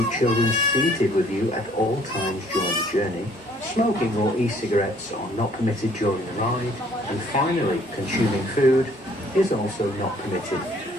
children seated with you at all times during the journey. Smoking or e-cigarettes are not permitted during the ride. And finally, consuming food is also not permitted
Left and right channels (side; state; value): both; normal; correlation 0.60